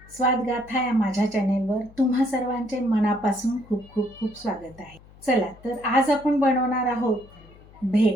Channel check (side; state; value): left; noise; hum, 23 dB below the sound